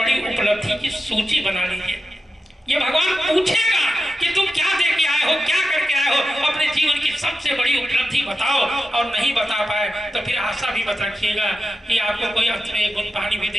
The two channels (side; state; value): both; normal; correlation 0.91